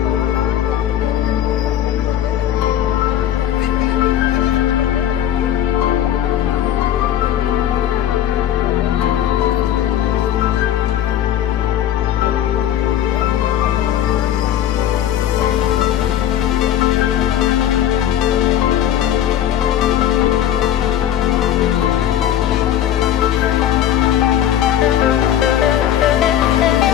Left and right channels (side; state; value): right; quieter; 11.0 dB